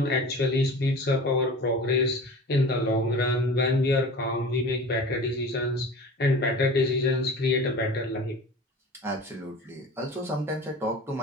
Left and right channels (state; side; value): normal; both; correlation 0.38